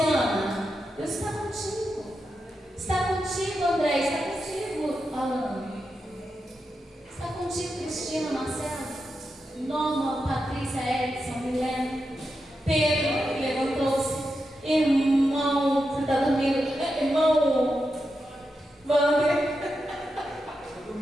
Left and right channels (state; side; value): normal; both; correlation 0.88